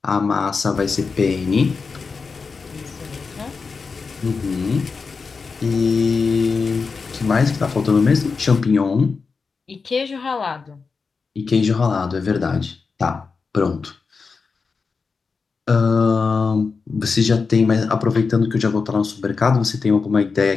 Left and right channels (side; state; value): right; quieter; 4.8 dB